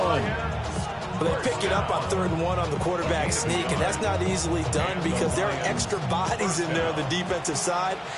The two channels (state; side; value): identical; both; correlation 1.00